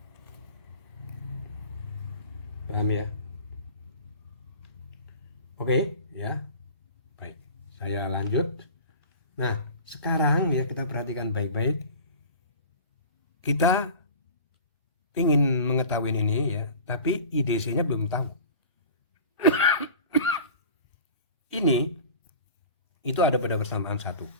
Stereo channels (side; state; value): both; inverted; correlation -0.39